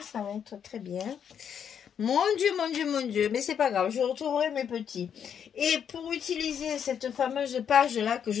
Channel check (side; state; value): right; quieter; 8.1 dB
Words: va être très bien. Mon Dieu, mon Dieu, mon Dieu. Mais c'est pas grave, je retrouverai mes petits. Et pour utiliser cette fameuse page-là que